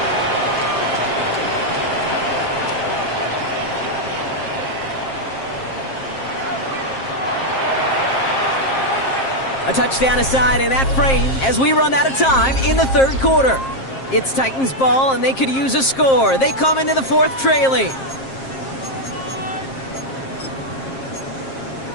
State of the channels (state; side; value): late; right; 7.5 ms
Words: A touchdown aside in that frame as we run out of time in the 3rd quarter. It's Titans ball, and they could use a score. They come into the 4th trailing.